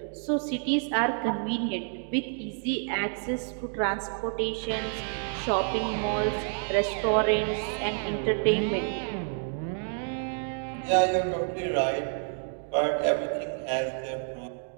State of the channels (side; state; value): left; silent; 57 dB below the other